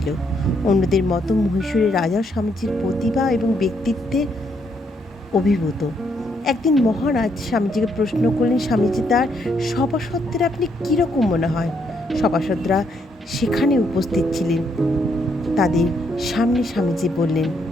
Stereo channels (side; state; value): both; normal; correlation 0.74